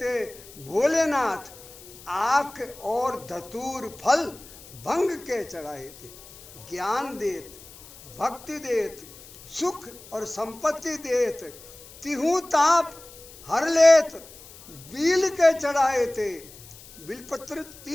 भोलेनाथ, आख और धतूर फल भंग के चढ़ाए थे, ज्ञान देत भक्ति देत सुख और संपत्ति देत, तिहु ताप हर लेत बील के चढ़ाए थे। बिलपत्र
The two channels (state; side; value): noise; left; hiss, 19 dB below the sound